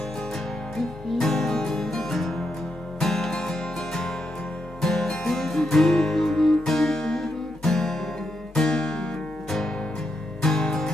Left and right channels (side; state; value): both; normal; correlation 0.82